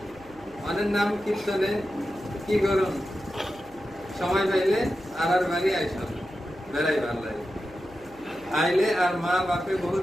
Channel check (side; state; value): left; noise; hum, 26 dB below the sound